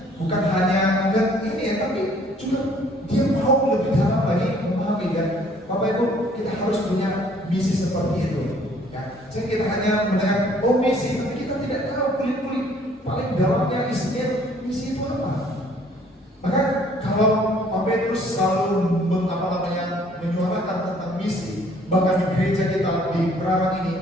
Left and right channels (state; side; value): normal; both; correlation 0.59